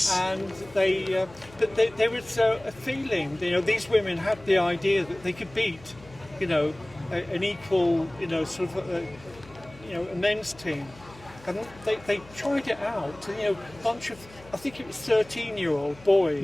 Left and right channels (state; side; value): noise; left; hum, 22 dB below the sound